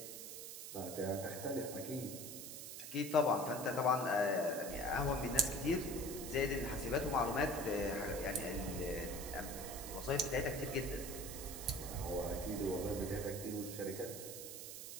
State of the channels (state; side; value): noise; right; hiss, 9 dB below the sound